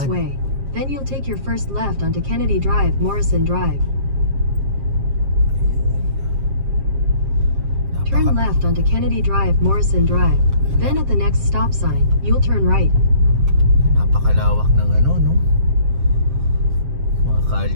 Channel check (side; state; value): left; late; 7.5 ms